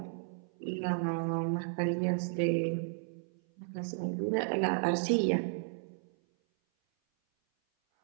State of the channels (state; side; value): silent; left; 55 dB below the other